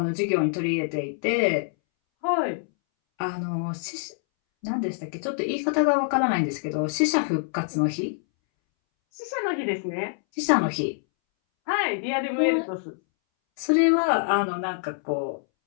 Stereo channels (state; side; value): silent; right; 61 dB below the other